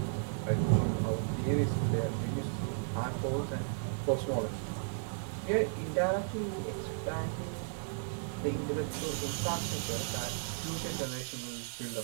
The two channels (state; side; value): silent; left; digital silence